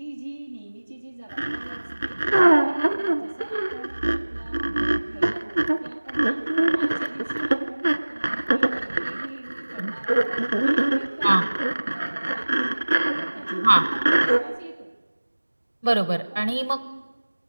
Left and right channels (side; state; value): both; inverted; correlation -1.00